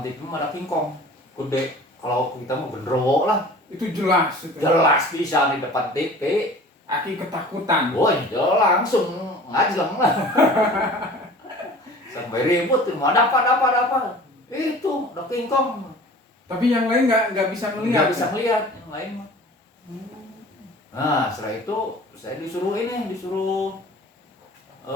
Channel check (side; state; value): both; normal; correlation 0.44